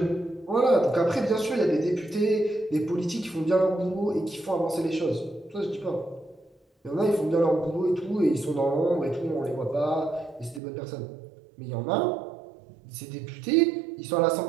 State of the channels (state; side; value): drops out; left; at 10.6 s